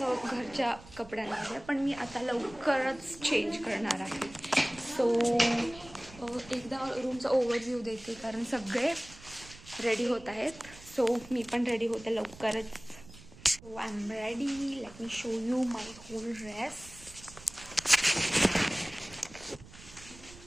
घरच्या कपड्यांमध्ये, पण मी आता लवकरच चेंज करणार आहे. सो एकदा रूमचा ओव्हरव्ह्यू देते, कारण सगळे रेडी होत आहेत. सो मी पण रेडी होते लवकरच. So I am ready. Let me show you my whole dress.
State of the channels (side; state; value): right; noise; rumble, 19 dB below the sound